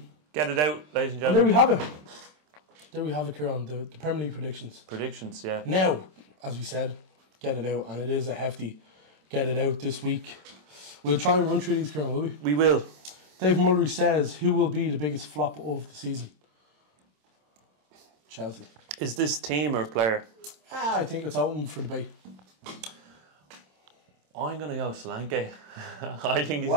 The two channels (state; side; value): late; left; 27 ms